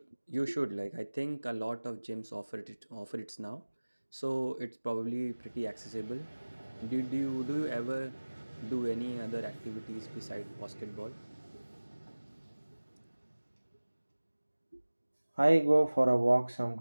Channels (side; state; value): both; inverted; correlation -1.00